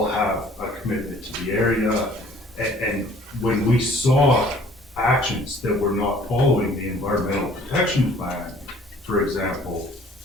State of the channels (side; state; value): both; normal; correlation 0.54